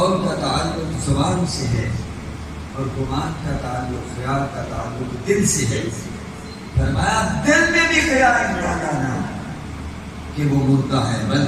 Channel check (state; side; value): identical; both; correlation 1.00